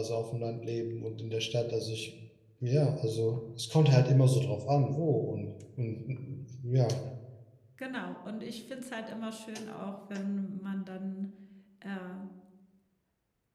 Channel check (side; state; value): both; identical; correlation 1.00